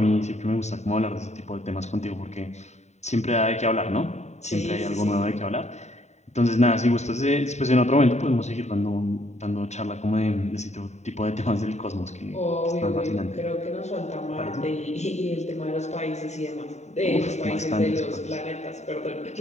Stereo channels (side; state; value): right; late; 0.33 ms